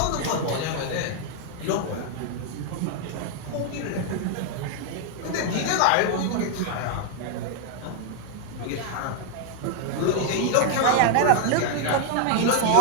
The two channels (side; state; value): both; different; correlation 0.00